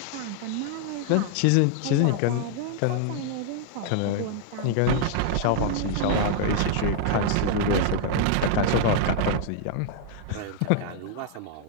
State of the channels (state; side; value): different; both; correlation 0.00